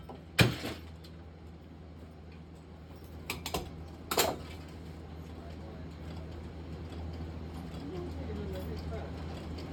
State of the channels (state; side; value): identical; both; correlation 1.00